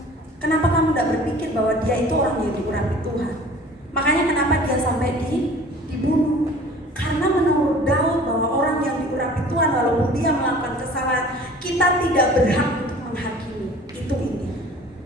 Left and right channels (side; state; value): both; normal; correlation 0.46